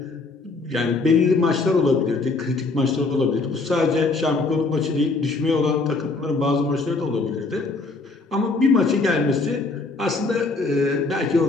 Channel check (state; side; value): quieter; right; 3.7 dB